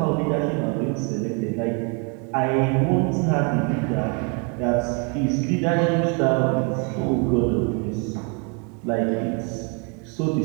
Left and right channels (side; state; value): left; quieter; 34.4 dB